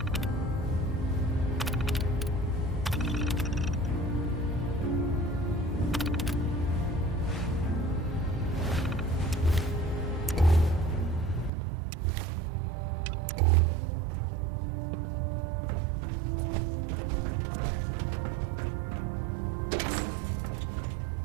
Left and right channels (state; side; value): drops out; left; at 11.5 s